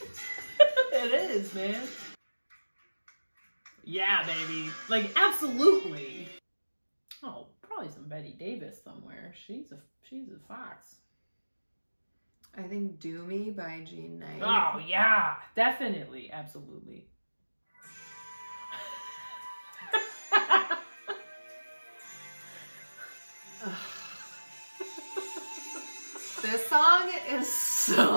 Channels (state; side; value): inverted; both; correlation -1.00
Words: It is, man. Yeah, baby. Like, absolutely. Oh, probably some Betty Davis somewhere. She's a fox. I think Do Me by Jean Knight. Oh, yeah. Definitely. Absolutely. This song is